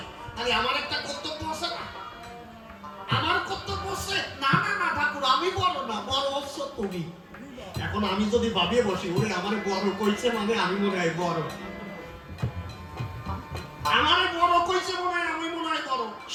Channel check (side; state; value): both; identical; correlation 1.00